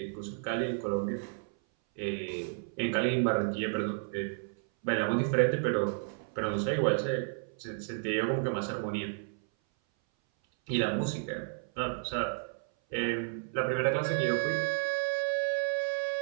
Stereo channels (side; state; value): left; silent; 56 dB below the other